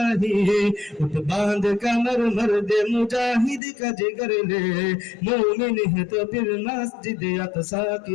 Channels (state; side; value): drops out; right; at 3.6 s